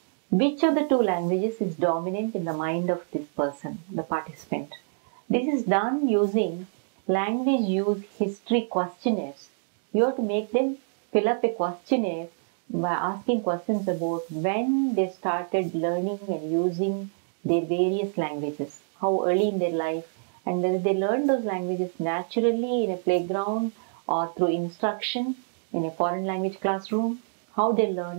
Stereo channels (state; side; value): silent; left; digital silence